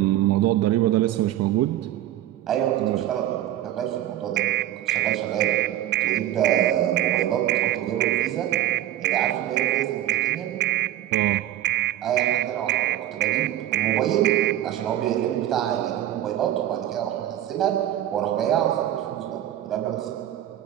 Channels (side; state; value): left; quieter; 12.8 dB